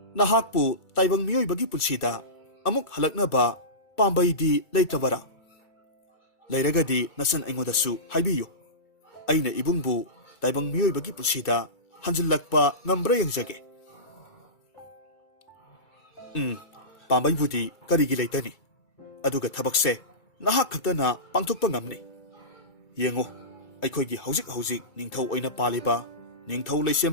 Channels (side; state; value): right; late; 2.3 ms